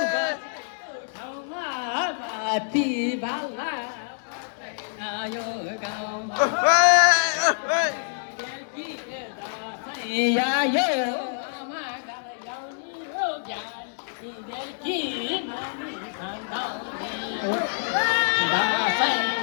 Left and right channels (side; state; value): right; silent; 61 dB below the other